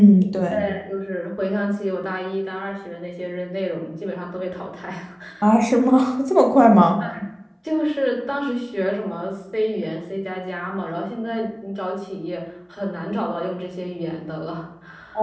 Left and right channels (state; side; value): identical; both; correlation 1.00